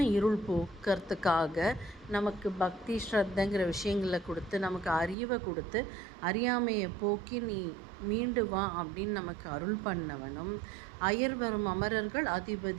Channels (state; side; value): drops out; left; at 5.2 s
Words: இருள் போக்கிறதுக்காக நமக்கு பக்தி ஸ்ரத்தைங்கிற விஷயங்களை கொடுத்து, நமக்கு அறிவை கொடுத்து, அறியாமையை போக்கி நீ மீண்டு வா அப்படின்னு நமக்கு அருள் பண்ணவனும், அயர் வரும் அமரர்கள்